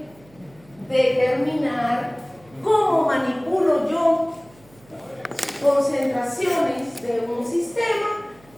determinar cómo manipulo yo concentraciones de un sistema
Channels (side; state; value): right; noise; hum, 27 dB below the sound